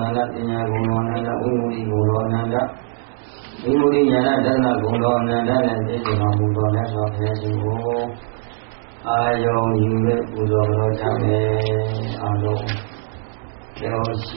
nanda tinya gồm đô nanda vimudi gồm đô nanda vimudi nhana dana gồm đô nanda nè bì giờ đô mù đô nè so phê si hô Ayong yu lệ bù đô đô cha mê a đô Kéo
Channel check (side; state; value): left; silent; 64 dB below the other